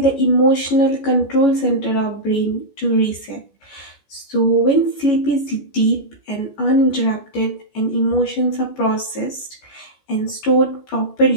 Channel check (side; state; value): right; late; 14 ms